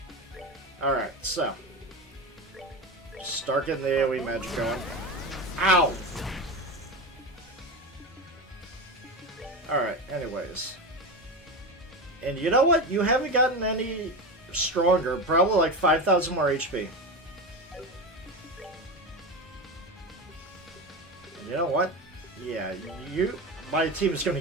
Alright, so. Start getting the AoE magic going. Ow! Alright, anyways. And you know what? You haven't gotten any stronger. Probably like 5,000 more HP. And you know what? Yeah, my team is going to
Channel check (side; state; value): both; normal; correlation 0.21